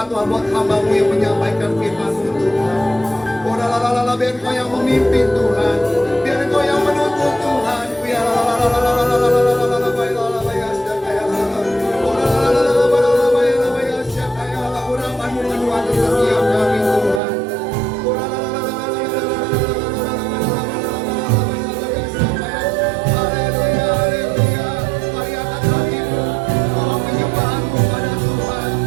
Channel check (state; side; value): drops out; left; at 17.2 s